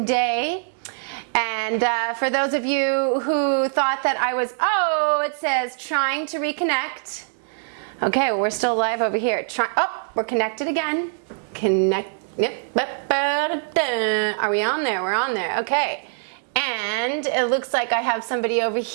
day. And for those of you who thought that I was, it says trying to reconnect. Okay, well, we're still live over here. We're connected again. Are we on there? We're on there. Okay. And it looks like I have somebody over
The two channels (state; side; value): silent; left; digital silence